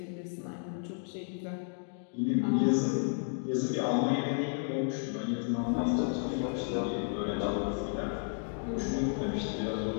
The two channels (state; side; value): silent; right; 56 dB below the other